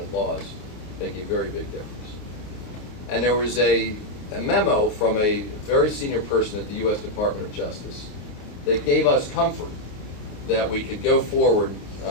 laws make a very big difference. And there was a memo from a very senior person at the U.S. Department of Justice that gave us comfort that we could go forward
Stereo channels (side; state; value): right; late; 29 ms